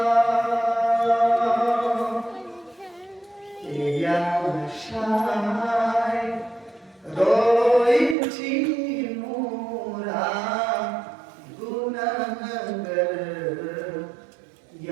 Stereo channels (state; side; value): drops out; left; at 8.2 s